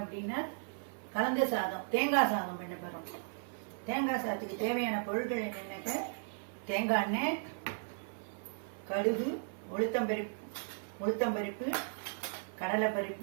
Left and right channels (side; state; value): left; silent; 54 dB below the other